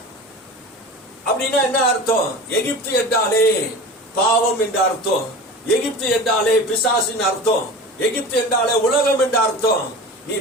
அப்படின்னா என்ன அர்த்தம்? எகிப்து என்றாலே பாவம் என்ற அர்த்தம். எகிப்து என்றாலே பிசாசின் அர்த்தம். எகிப்து என்றாலே உலகம் என்ற அர்த்தம். நீ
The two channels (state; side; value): normal; both; correlation 0.34